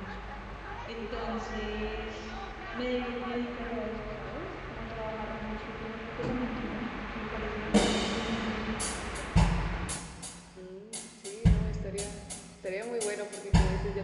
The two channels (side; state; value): both; identical; correlation 1.00